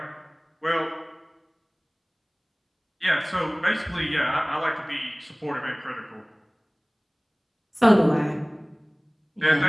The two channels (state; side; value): identical; both; correlation 1.00